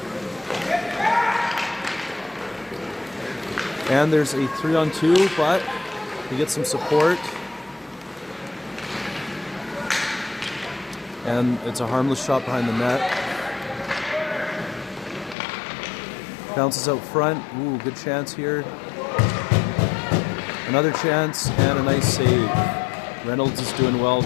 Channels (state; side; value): drops out; right; at 15.4 s